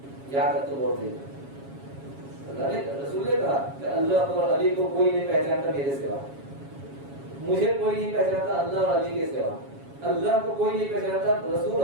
یا تک تو بول دیں, اللہ نے, رسول نے کہا کہ اللہ اور علی کو کوئی نہیں پہچانتا میرے سوا, مجھے کوئی نہیں پہچانتا اللہ اور علی کے سوا, اللہ کو کوئی نہیں پہچانتا رسول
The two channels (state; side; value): late; left; 7.3 ms